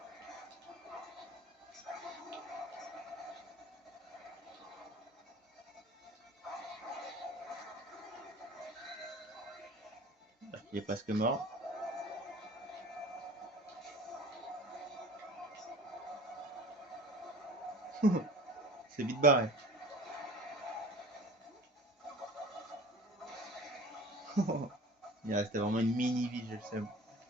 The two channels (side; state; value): both; normal; correlation 0.42